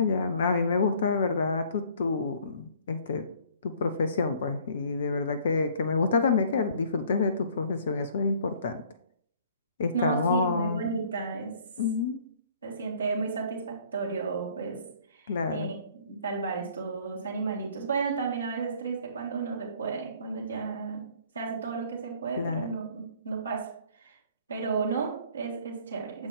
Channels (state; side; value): inverted; both; correlation -0.57